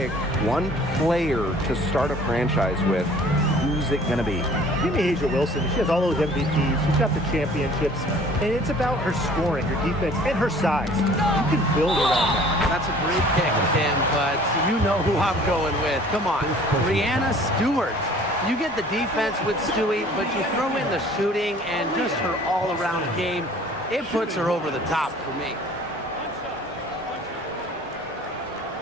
one player to start a franchise with, who's who's it going to be? Give me Asia Wilson. She has all those MVPs. She's got the championships. And it's about her scoring, her defense, and her size. You can build around that. That's a great pick, Tim, but you know who I'm going with. Come on, Brianna Stewart. You get the defense with Stewie, but you throw in the shooting and just her all-around game. It puts her over the top for me.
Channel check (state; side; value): normal; both; correlation 0.51